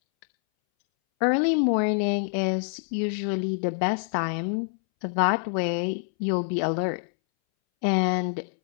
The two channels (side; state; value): right; silent; 61 dB below the other